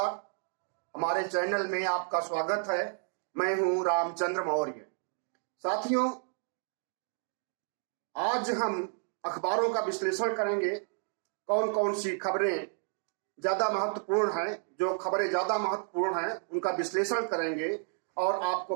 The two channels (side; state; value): left; silent; 57 dB below the other